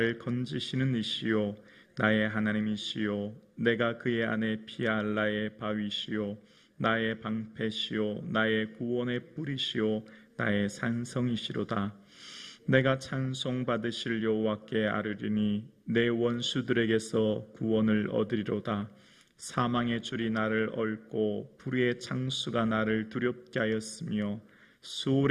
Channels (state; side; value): identical; both; correlation 1.00